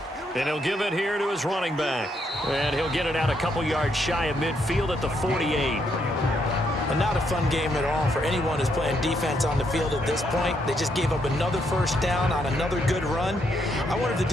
And he'll give it here to his running back. And he'll get it out a couple yards shy of midfield at the 48. And not a fun game at all for anyone who's playing defense on the field at this point. They just gave up another first down on another good run. I wonder if the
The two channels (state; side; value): normal; both; correlation 0.75